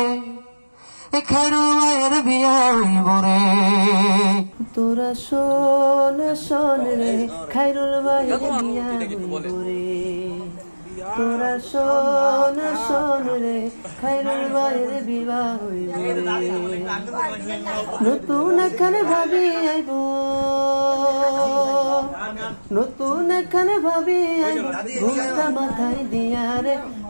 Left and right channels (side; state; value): both; inverted; correlation -1.00